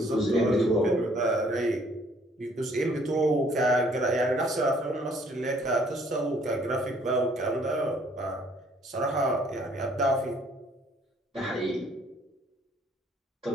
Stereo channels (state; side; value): normal; both; correlation 0.61